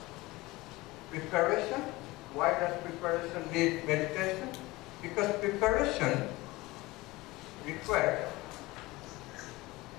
preparation. Why does preparation need meditation? Because preparation requires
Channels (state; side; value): quieter; right; 20.5 dB